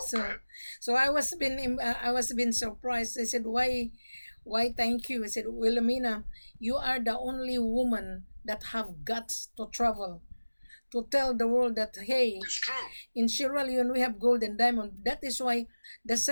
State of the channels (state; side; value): inverted; both; correlation -1.00